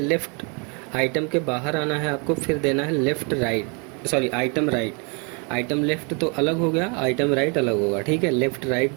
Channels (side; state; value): left; quieter; 34.4 dB